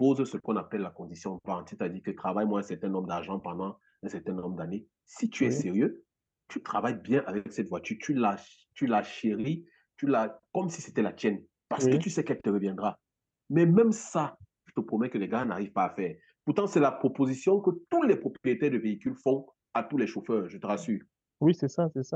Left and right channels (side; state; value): both; identical; correlation 1.00